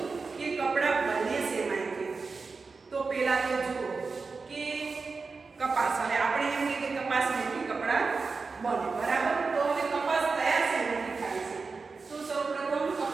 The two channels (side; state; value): left; quieter; 4.4 dB